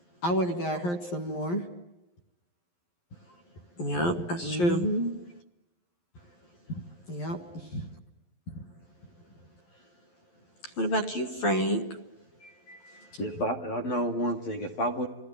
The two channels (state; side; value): late; right; 11 ms